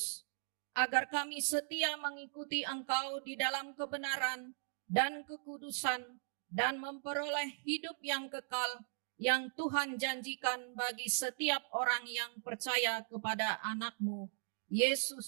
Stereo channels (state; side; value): silent; left; digital silence